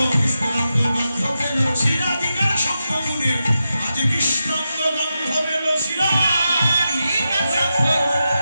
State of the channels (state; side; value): inverted; both; correlation -0.89